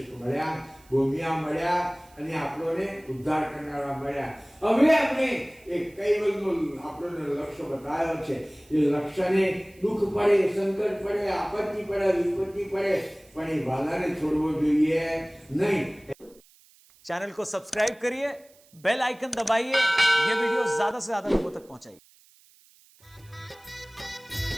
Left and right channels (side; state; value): right; noise; hiss, 28 dB below the sound